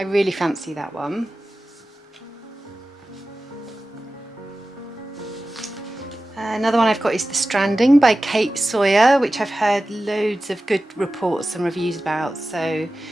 really fancy that one. Another one I've got is The Stranding by Kate Sawyer, which I've heard loads of good reports and reviews about, so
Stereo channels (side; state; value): both; normal; correlation 0.95